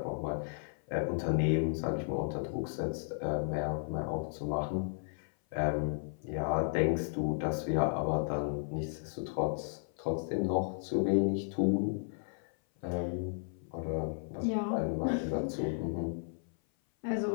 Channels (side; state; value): right; silent; 55 dB below the other